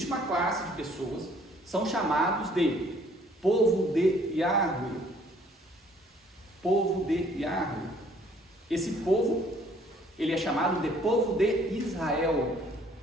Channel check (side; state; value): both; normal; correlation 0.60